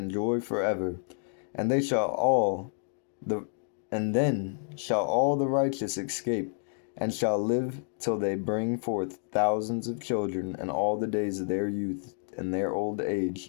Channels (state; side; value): silent; right; digital silence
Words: joy forever, and they shall all the and then shall all the righteous escape, and shall live till they bring forth thousands of children, and all the days of their youth and their old